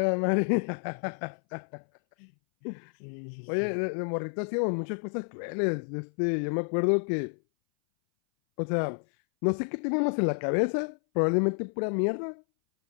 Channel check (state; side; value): silent; right; 58 dB below the other